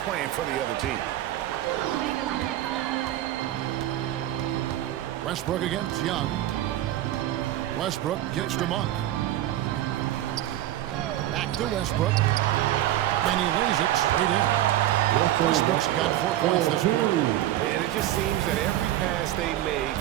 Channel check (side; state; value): left; quieter; 13.5 dB